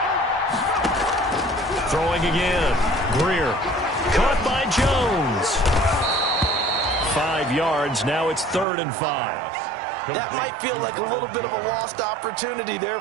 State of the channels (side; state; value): left; drops out; at 8.7 s